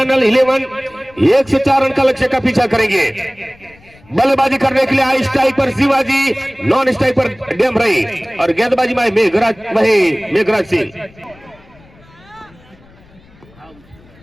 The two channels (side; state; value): left; noise; rumble, 27 dB below the sound